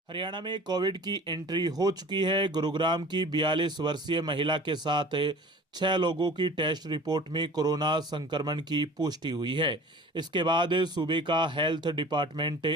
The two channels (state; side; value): normal; both; correlation 0.43